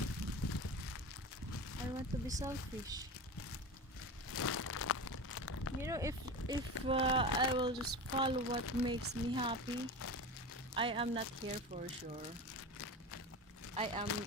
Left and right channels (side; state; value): both; normal; correlation 0.27